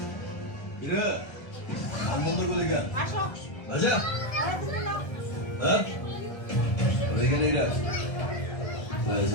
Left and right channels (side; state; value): right; late; 1.0 ms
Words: 이래 안 먹는 거니까 맞아? 어? 왜 그래? Well, it's